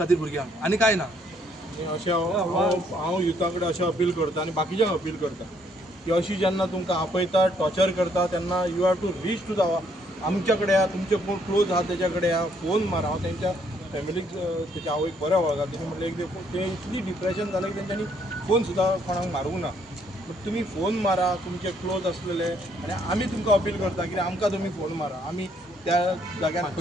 भुरग्यांक आनी कांय ना. अशें हांव युथा कडेन अशें अपील करता आनी बाकीच्यांक अपील करता की अशी जेन्ना तुमकां आपयता, टॉर्चर करता तेन्ना you have to reach to the आमच्या कडेन या, तुमचे कोण क्लोज आहा तेच्या कडेन या, फोन मारा. हांव तेंच्या फॅमिलीक तेच्या आवयक बरें वळखता. तेणी म्हटलें ते इतली डिप्रेशन जालें की तेंच्यांनी फोन सुद्दां कोणाक मारूंक ना. बट तुमी फोन मारा तुमचे क्लोज आसलेले आनी आमी तुमकां अपील करता की आमकां तुमी फोन मारा. आमी त्या जाग्यार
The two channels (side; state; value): both; normal; correlation 0.68